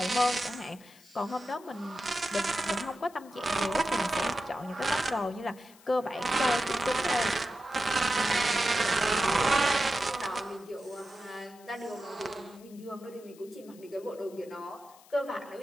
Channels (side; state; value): left; noise; hiss, 25 dB below the sound